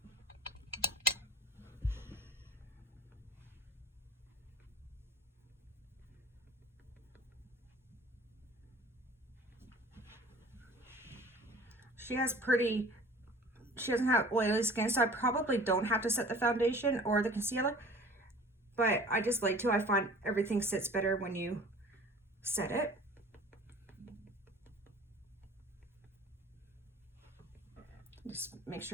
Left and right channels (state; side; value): normal; both; correlation 0.46